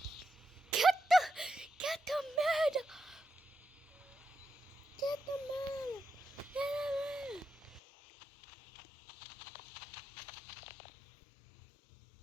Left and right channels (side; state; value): right; drops out; at 7.8 s